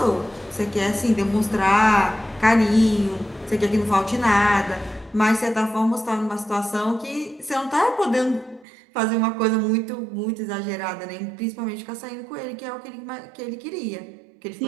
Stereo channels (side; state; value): left; drops out; at 8.7 s